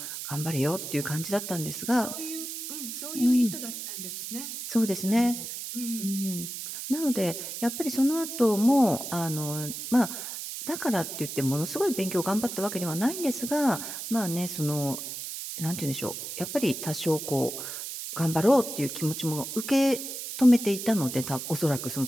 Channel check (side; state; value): right; noise; hiss, 7 dB below the sound